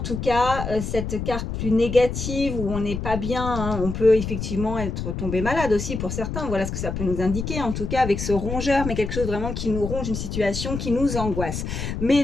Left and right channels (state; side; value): noise; left; rumble, 5 dB below the sound